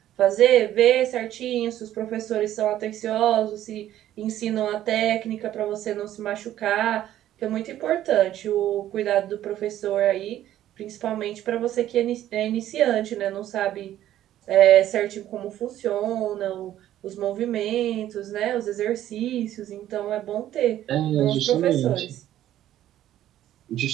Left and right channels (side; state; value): left; quieter; 12.5 dB